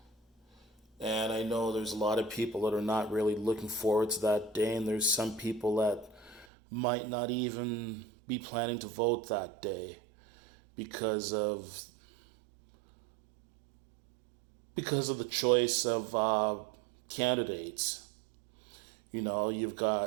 And I know there's a lot of people that are not really looking forward to that day, and there's some people that might not even be planning to vote that day because of the choice of candidates. You know, you've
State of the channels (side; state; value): left; drops out; at 6.5 s